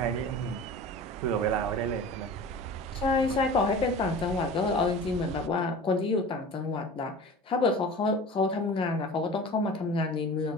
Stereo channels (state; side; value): normal; both; correlation 0.37